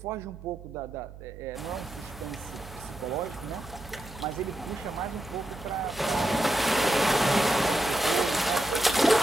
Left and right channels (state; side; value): noise; right; hum, 15 dB below the sound